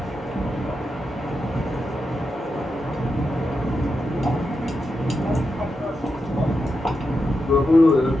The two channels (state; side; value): normal; both; correlation 0.87